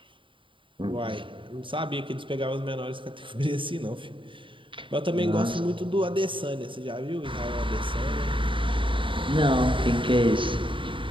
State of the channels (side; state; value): left; late; 0.25 ms